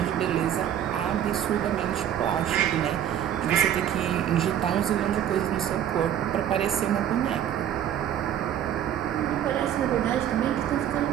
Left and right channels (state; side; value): quieter; left; 10.3 dB